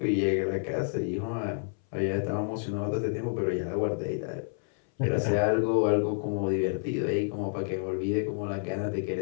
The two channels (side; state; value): right; silent; 58 dB below the other